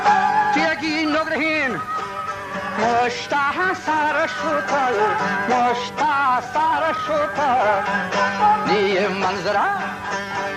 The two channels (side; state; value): both; identical; correlation 1.00